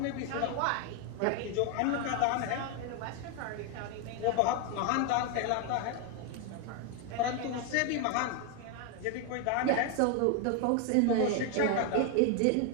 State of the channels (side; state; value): both; different; correlation 0.01